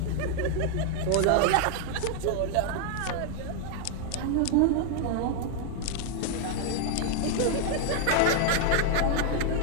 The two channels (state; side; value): different; both; correlation 0.00